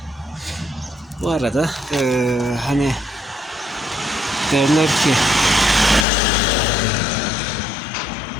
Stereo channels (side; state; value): right; drops out; at 6.1 s